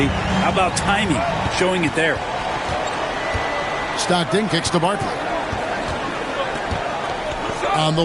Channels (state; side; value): identical; both; correlation 1.00